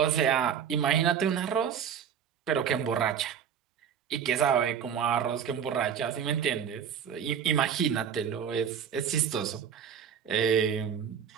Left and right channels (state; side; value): quieter; left; 7.9 dB